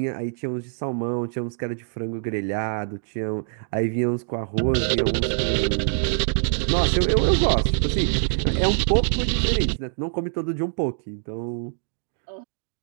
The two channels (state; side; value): silent; left; digital silence